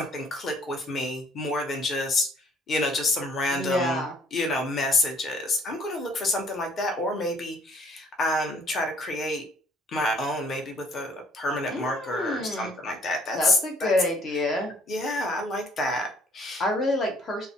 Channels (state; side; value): normal; both; correlation 0.60